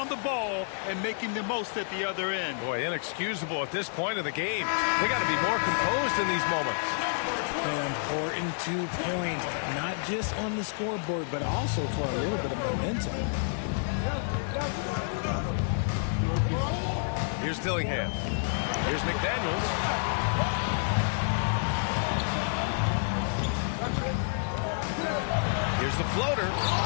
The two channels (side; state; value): right; silent; 58 dB below the other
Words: the ball and making the most at the other end. Boy, inexcusable at this point of the game. They got to be more composed in these moments. An important 2 points, not just on the scoreboard, but also for a little bit of momentum. Here's Dillingham. Here's McDaniels. Here's the floater.